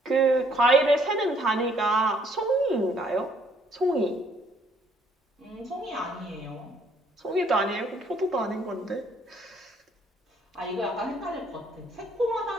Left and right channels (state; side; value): normal; both; correlation 0.65